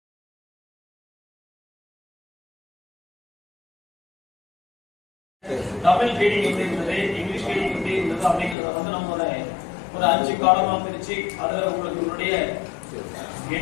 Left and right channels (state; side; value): drops out; right; at 8.6 s